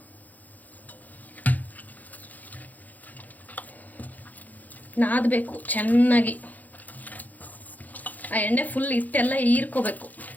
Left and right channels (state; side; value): late; right; 0.081 ms